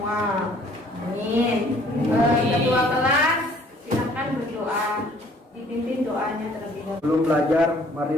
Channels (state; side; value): normal; both; correlation 0.57